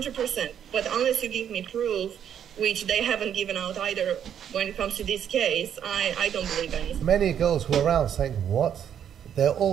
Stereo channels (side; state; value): left; quieter; 9.1 dB